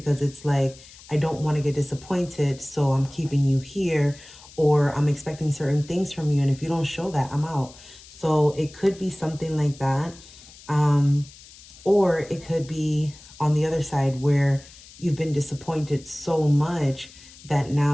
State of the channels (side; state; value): left; noise; hiss, 21 dB below the sound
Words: it's like, I don't want to get disappointed, so I'm keeping you here, or I'm expecting certain things from you. And if you don't show that, I'm out. So it could be something like that. Or it could be on the other side where you've been disappointed so much that